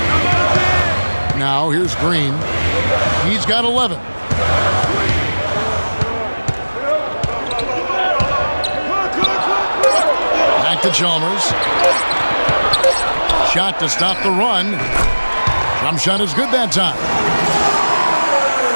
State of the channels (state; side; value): inverted; both; correlation -1.00